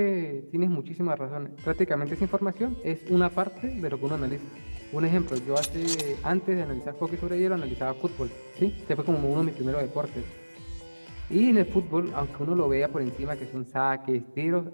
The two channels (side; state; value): both; inverted; correlation -1.00